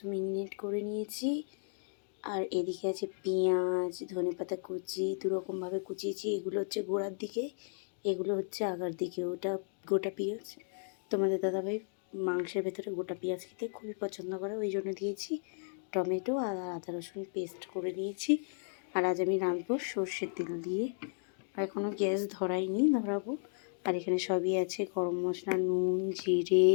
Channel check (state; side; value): silent; right; digital silence